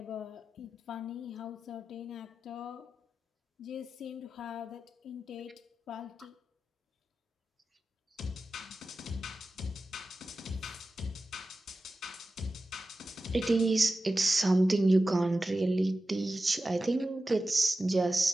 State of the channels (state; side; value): normal; both; correlation 0.93